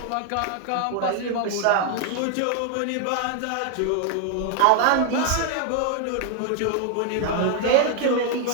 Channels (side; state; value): both; different; correlation 0.00